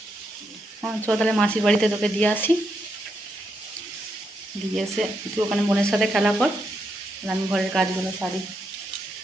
চল তাহলে মাসির বাড়িতে তোকে দিয়ে আসি, দিয়ে এসে তুই ওখানে বোনের সাথে খেলা কর, আমি ঘরের কাজগুলো সারি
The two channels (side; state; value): both; normal; correlation 0.81